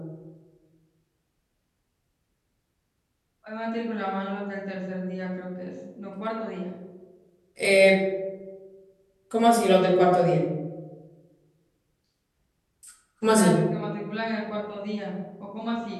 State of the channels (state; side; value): identical; both; correlation 1.00